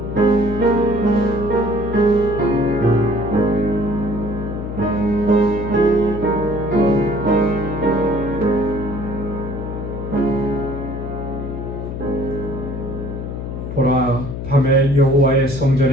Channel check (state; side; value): noise; left; hum, 6 dB below the sound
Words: 보라, 밤에 여호와의